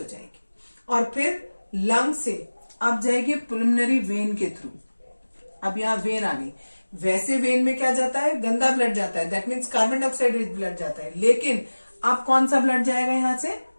जाएगी, और फिर लंग से अब जाएगी पुल्मोनरी वेन के थ्रू। अब यहाँ वेन आ गई, वैसे वेन में क्या जाता है, गंदा ब्लड जाता है, that means carbon dioxide rich blood जाता है। लेकिन अब कौन सा ब्लड जाएगा, यहां से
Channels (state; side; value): inverted; both; correlation -1.00